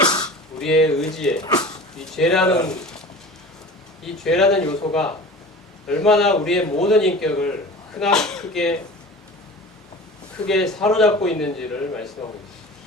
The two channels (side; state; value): both; normal; correlation 0.38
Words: 우리의 의지에 이 죄라는 요소가 얼마나 우리의 모든 인격을 크게 사로잡고 있는지를 말씀하고 있습니다.